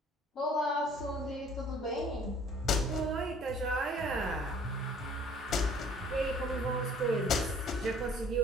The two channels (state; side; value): normal; both; correlation 0.54